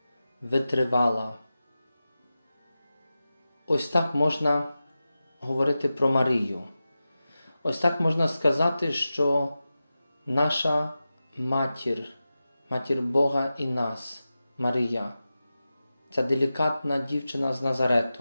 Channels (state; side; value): inverted; both; correlation -0.93